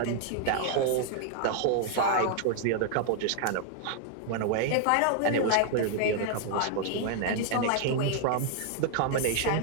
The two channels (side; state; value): both; different; correlation 0.00